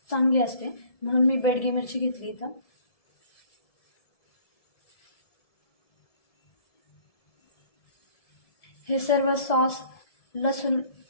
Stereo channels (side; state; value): right; late; 1.7 ms